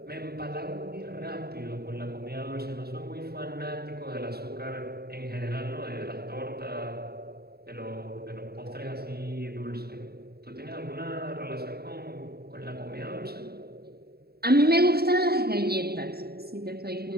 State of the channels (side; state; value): left; late; 0.46 ms